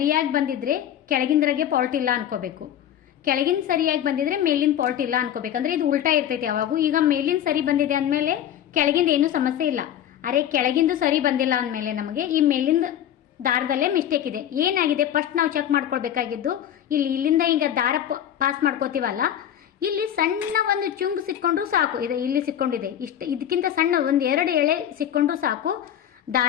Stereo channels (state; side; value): quieter; right; 10.5 dB